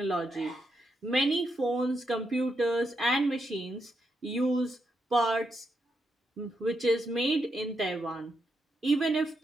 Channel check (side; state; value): both; normal; correlation 0.82